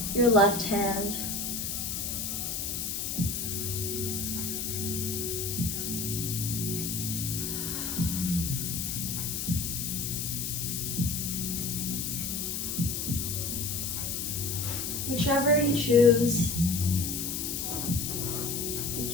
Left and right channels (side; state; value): left; noise; hiss, 2 dB below the sound